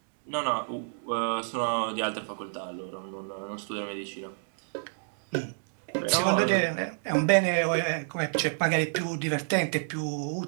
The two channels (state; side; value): silent; left; digital silence